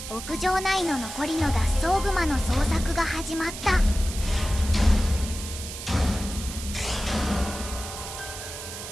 牧場内の残りの脱走グマの捜索が始まった。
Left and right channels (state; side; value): noise; right; hiss, 10 dB below the sound